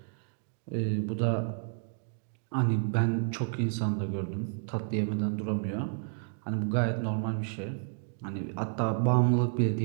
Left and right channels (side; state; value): left; silent; digital silence